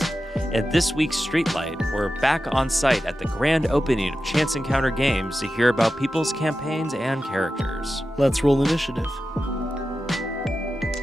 At this week's Streetlight, we're back on site at the grand opening of Chance Encounter Games to hear about people's campaigns and characters. Let's roll initiative.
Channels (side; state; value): both; normal; correlation 0.92